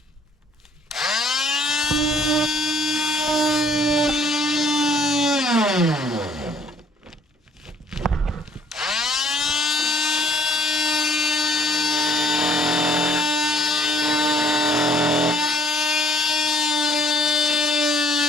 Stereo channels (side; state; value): both; normal; correlation 0.60